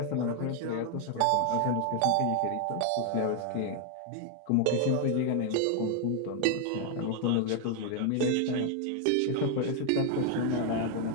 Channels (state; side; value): different; both; correlation 0.00